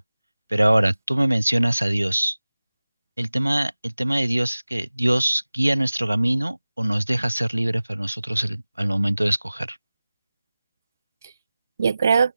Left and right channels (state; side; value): inverted; both; correlation -0.97